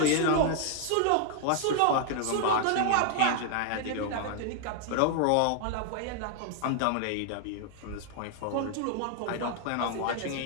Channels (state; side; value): different; both; correlation 0.00